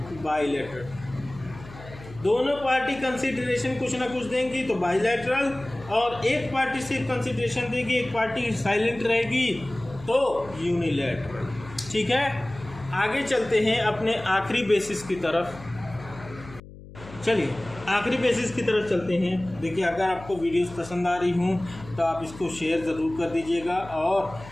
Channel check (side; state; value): left; noise; hum, 17 dB below the sound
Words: बाइलैटरल। दोनों पार्टी कंसिडरेशन कुछ ना कुछ देंगी तो बाइलैटरल, और एक पार्टी सिर्फ कंसिडरेशन देगी, एक पार्टी साइलेंट रहेगी तो यूनिलैटरल। ठीक है, आगे चलते हैं अपने आखिरी बेसिस की तरफ। चलिए आखिरी बेसिस की तरफ चलते हैं। देखिए अगर आपको वीडियोस पसंद आ रही हूँ तो आप इसको शेयर ज़रूर कर दीजिएगा और